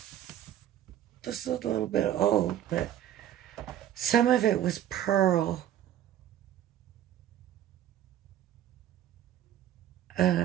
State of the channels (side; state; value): left; quieter; 11.3 dB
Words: is a little bit old, but some of it was pearl.